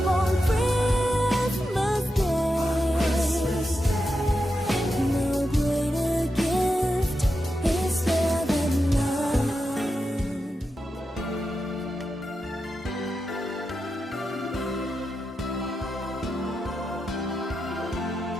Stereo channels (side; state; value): both; normal; correlation 0.88